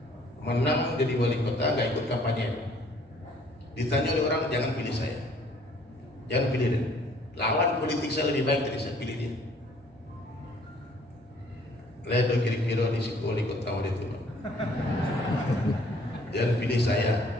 Menang jadi wali kota, gak ikut kampanye. Ditanya oleh orang, jangan pilih saya, jangan pilih dia. Lawan politik saya lebih baik dari saya, pilih dia. Ledo kiri-kiri di situ wali kota wali itu. Jangan pilih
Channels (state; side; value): normal; both; correlation 0.59